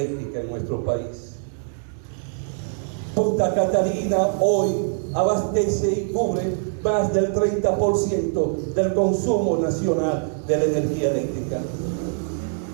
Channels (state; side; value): silent; left; digital silence